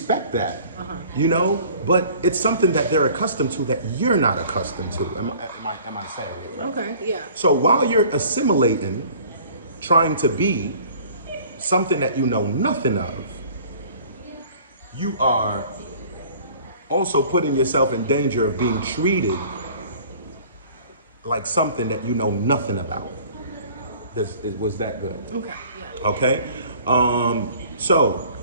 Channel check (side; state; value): both; inverted; correlation -0.50